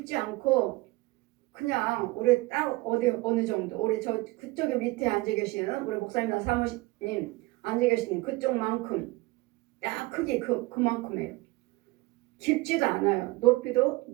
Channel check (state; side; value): quieter; left; 21.4 dB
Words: 않고 그냥 우리 딱 어느 정도 우리 저 그쪽에 밑에 앉아 계시는 우리 목사님이나 사모님 앉아 계시는 그쪽만큼 딱 크기 그만큼이에요. 깊지도 않아요. 높이도